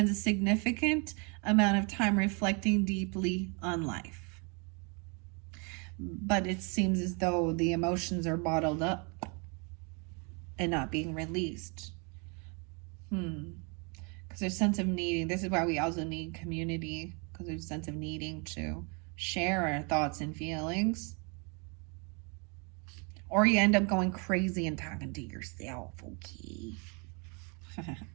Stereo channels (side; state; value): left; quieter; 33.7 dB